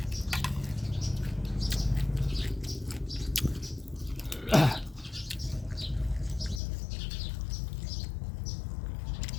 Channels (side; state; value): right; drops out; at 6.6 s